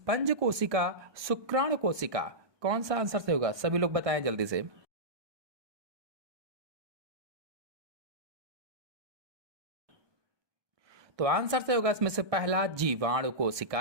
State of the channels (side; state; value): left; late; 1.2 ms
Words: कोशिका, शुक्राणु कोशिका। कौन सा आंसर सही होगा? सभी लोग बताएं जल्दी से। तो आंसर से होगा इसमें से पहला जीवाणु